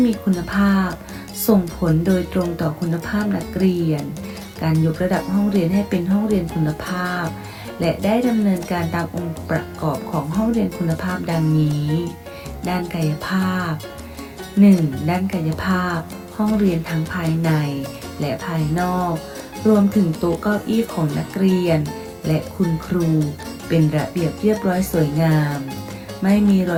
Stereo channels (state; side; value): identical; both; correlation 1.00